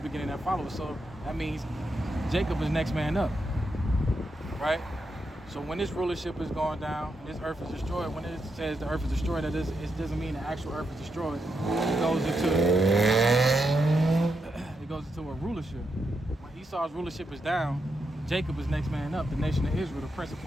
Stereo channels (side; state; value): both; normal; correlation 0.83